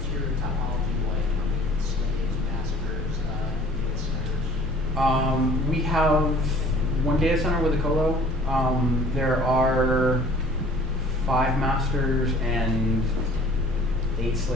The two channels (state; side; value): normal; both; correlation 0.51